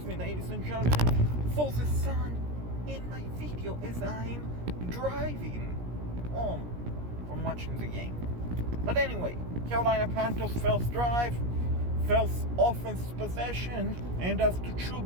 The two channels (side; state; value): left; late; 17 ms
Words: me, ladies and gentlemen, for the sun in my video as I'm driving home from watching the game. But anyway, Carolina Panthers first drive, first offense possession, and as to